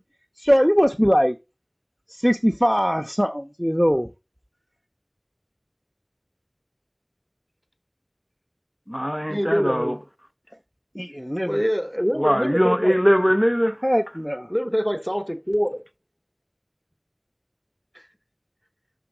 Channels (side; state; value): both; identical; correlation 1.00